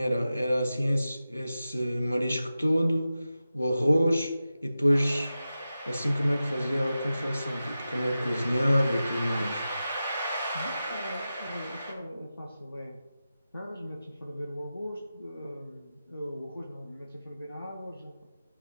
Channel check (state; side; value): inverted; both; correlation -0.93